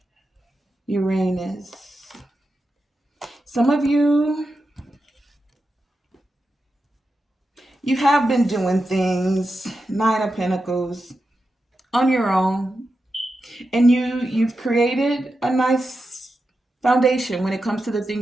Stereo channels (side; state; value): both; normal; correlation 0.89